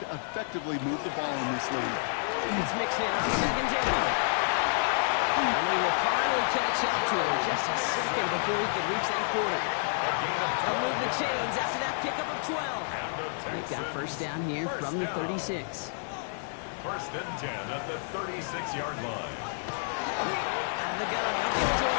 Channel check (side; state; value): right; silent; digital silence